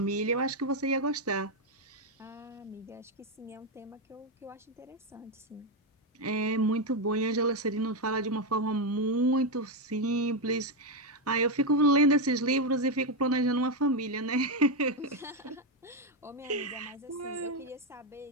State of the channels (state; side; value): normal; both; correlation 0.06